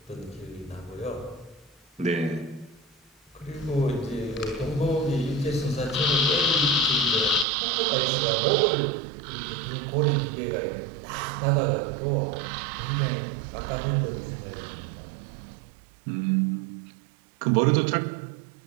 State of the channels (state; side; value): drops out; left; at 7.5 s